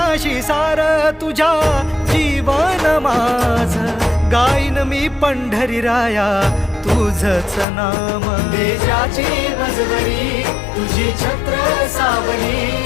सार तुझ्या जीवन माझ गाईन मी पंढरी राया तुझच नाम देशाची मजबरी तुझी छत्र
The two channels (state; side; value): drops out; right; at 7.7 s